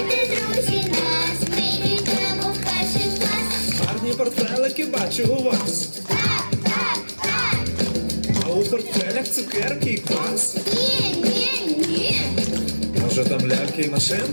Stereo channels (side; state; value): both; inverted; correlation -1.00